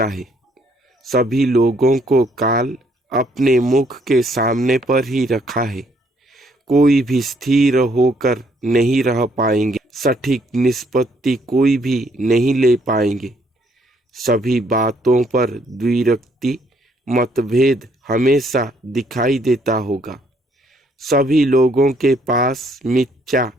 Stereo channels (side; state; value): both; normal; correlation 0.68